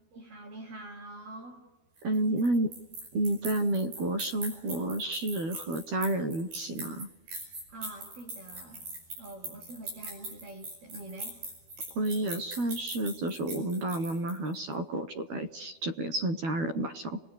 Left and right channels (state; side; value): late; left; 12 ms